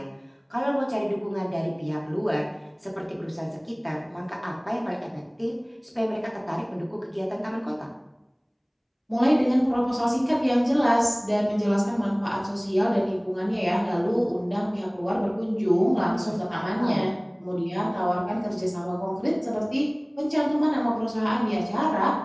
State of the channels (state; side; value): identical; both; correlation 1.00